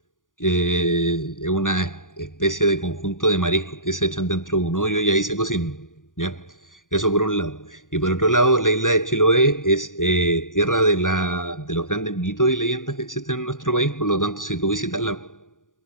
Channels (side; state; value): right; late; 0.88 ms